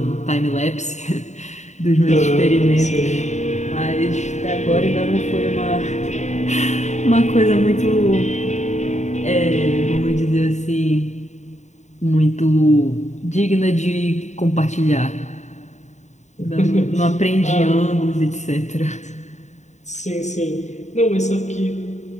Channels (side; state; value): right; late; 0.34 ms